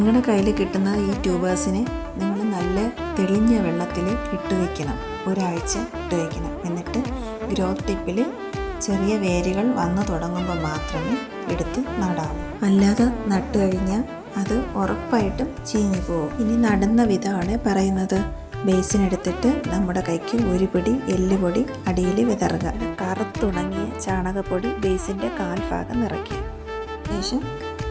കയ്യിൽ കിട്ടുന്ന ഈ ട്യൂബേഴ്സിനെ നിങ്ങൾ നല്ല തെളിഞ്ഞ വെള്ളത്തിൽ ഇട്ട് വയ്ക്കണം. ഒരാഴ്ച ഇട്ട് വയ്ക്കണം. എന്നിട്ട് ഗ്രോത്ത് ടിപ്പിൽ ചെറിയ വേരുകൾ വന്നു തുടങ്ങുമ്പോൾ മാത്രമേ എടുത്ത് നടാവൂ. അല്ലാതെ നട്ട് കഴിഞ്ഞാൽ അത് ഉറപ്പായിട്ടും ചീഞ്ഞു പോകും. ഇനി നടുന്ന വിധമാണ് പറയുന്നത്. ബേസിനെടുത്തിട്ട് നമ്മുടെ കൈക്ക് ഒരു പിടി എല്ലുപൊടി അടിയിൽ വിതറുക. കറുത്തുണങ്ങിയ ചാണകപ്പൊടി ബേസിൻ്റെ കാൽഭാഗം നിറയ്ക്കുക. ശേഷം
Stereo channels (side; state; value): both; identical; correlation 1.00